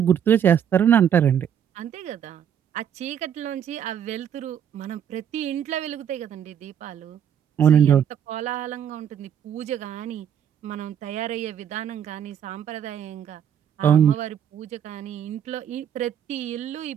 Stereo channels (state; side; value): quieter; left; 9.0 dB